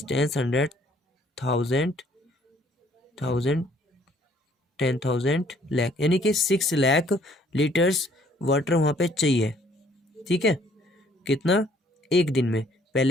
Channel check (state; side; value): normal; both; correlation 0.61